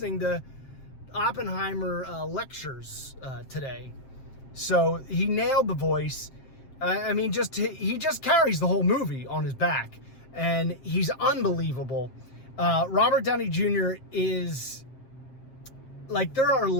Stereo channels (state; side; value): late; right; 7.6 ms